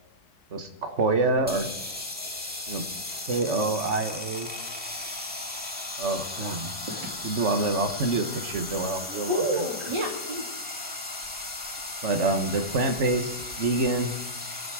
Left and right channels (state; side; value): normal; both; correlation -0.15